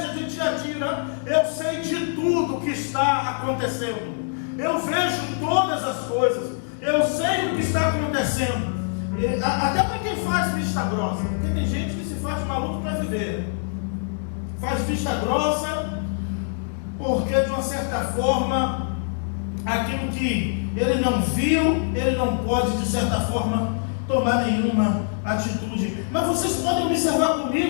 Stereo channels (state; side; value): silent; right; digital silence